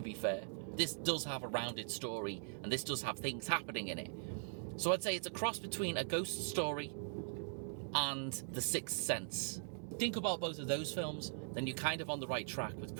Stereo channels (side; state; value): left; silent; digital silence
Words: be fair. This does have a rounded story, and this does have things happening in it. So I'd say it's a cross between A Ghost Story and The Sixth Sense. Think about both of those films, then you're kind of on the right track with